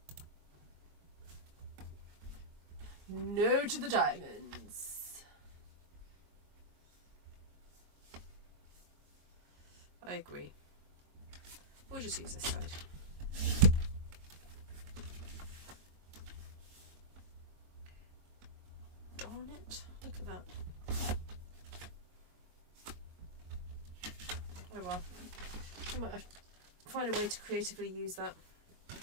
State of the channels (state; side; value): late; left; 22 ms